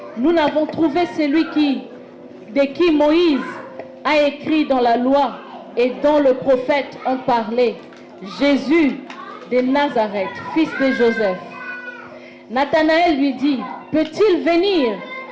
nous n'avons trouvé celui de qui Moïse a écrit dans la loi et dont le prophète ont parlé, Jésus de Nazareth, fils de Joseph. Nathanaël lui dit: peut-il venir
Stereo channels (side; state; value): both; identical; correlation 1.00